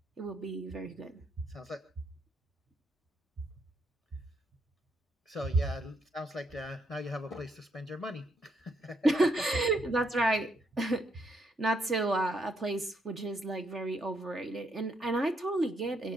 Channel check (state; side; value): normal; both; correlation 0.75